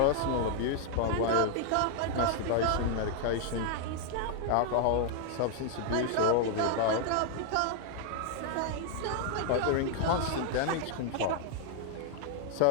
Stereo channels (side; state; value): both; different; correlation 0.00